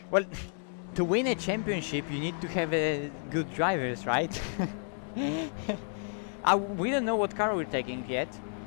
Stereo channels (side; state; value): right; silent; 57 dB below the other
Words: Well, to win a championship, you need to have good drivers, right? We don't know what car we're taking yet.